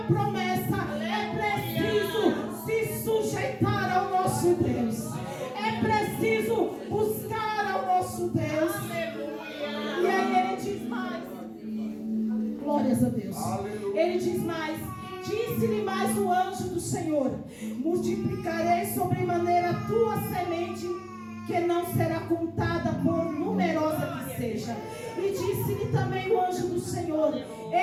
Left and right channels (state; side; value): identical; both; correlation 1.00